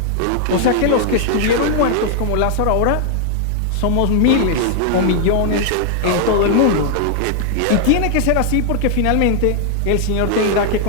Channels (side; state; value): both; different; correlation 0.00